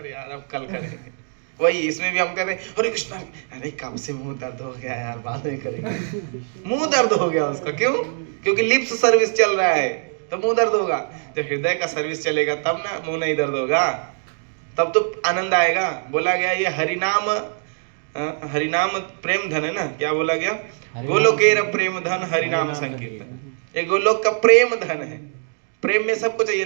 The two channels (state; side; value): silent; left; 62 dB below the other